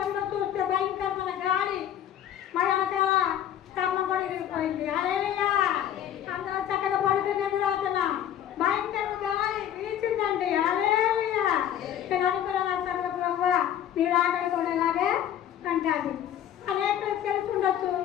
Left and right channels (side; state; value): right; quieter; 10.5 dB